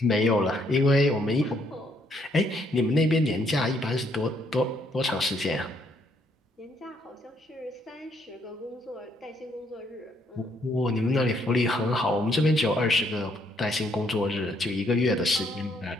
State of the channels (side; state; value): both; normal; correlation 0.70